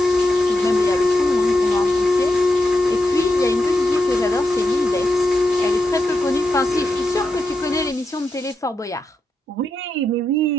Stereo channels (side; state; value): both; normal; correlation 0.86